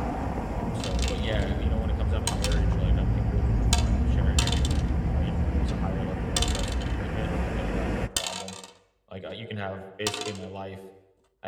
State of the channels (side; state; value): both; identical; correlation 1.00